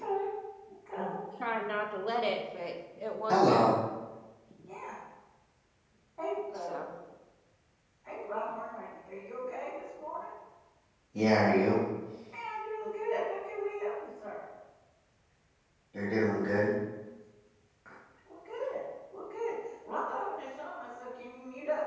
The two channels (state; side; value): identical; both; correlation 1.00